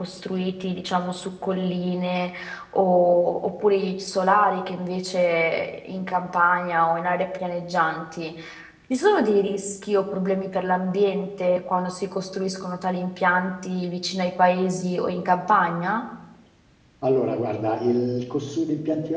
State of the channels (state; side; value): identical; both; correlation 1.00